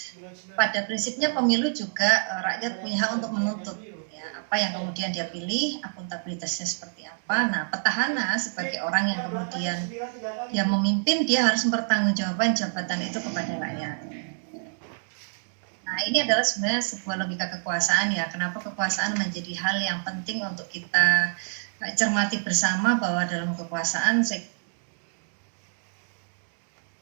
pada prinsipnya pemilu juga rakyat punya hak untuk menuntut ya, apa yang kemudian dia pilih, akuntabilitasnya seperti apa. Nah, petahana sebagai orang yang kemudian dia memimpin, dia harus mempertanggungjawabkan jabatan itu kepada rakyat. Nah, ini adalah sebenarnya sebuah logika kekuasaan ya. Kenapa kekuasaan menjadi hal yang penting untuk kita cermati bersama, bahwa dalam kekuasaan saya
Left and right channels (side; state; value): left; silent; digital silence